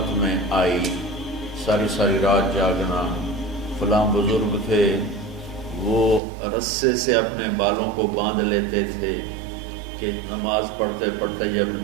میں آئی، ساری ساری رات جاگنا۔ فلاں بزرگ تھے، وہ رسے سے اپنے بالوں کو باندھ لیتے تھے کہ نماز پڑھتے پڑھتے جب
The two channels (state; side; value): drops out; left; at 6.2 s